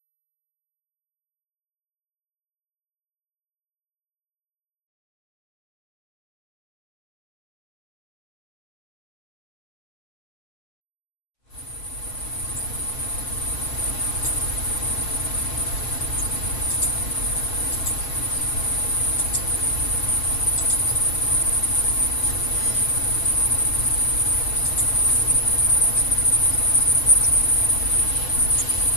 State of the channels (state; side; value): late; right; 5.3 ms